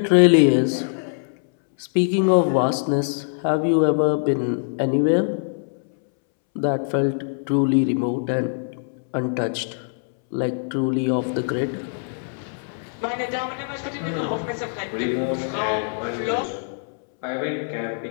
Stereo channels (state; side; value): silent; right; 63 dB below the other